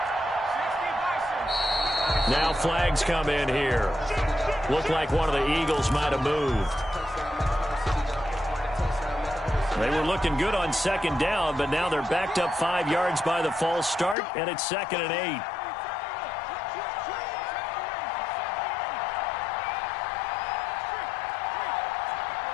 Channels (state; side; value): drops out; right; at 14.2 s